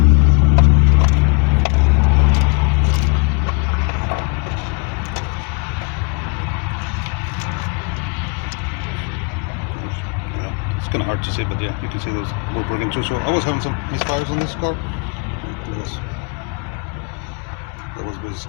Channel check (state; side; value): quieter; right; 32.1 dB